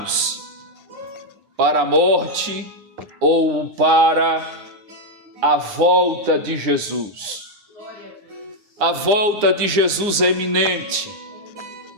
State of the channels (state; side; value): late; left; 9.8 ms